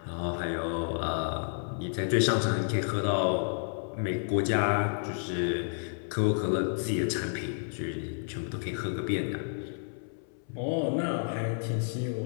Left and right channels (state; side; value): silent; right; 57 dB below the other